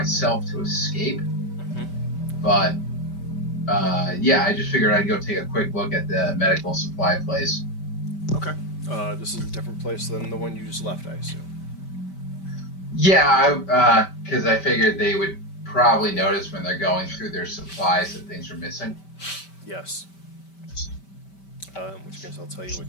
to escape. Mm-hmm. But, yeah, I just figured I'd go take a quick look at the medical supply place. Okay. This is a different place than the one you just left, I assume. Yeah, because I figured they would probably notice when they're going through their supplies that things are missing. Yes. In which case I'll tell you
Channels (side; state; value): right; late; 5.1 ms